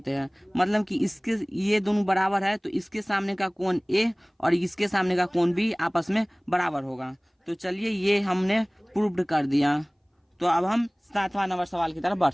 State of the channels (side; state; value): both; identical; correlation 1.00